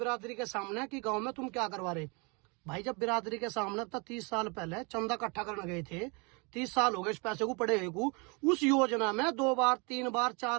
के सामने कि गाँव में तुम क्या करवा रहे। भाई जब बिरादरी के सामने तो 30 साल पहले चंदा इकट्ठा करने गए थे, 30 साल हो गए इस पैसे को पड़े हुए को। उस योजना में 2 बार 3 बार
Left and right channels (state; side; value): quieter; left; 31.1 dB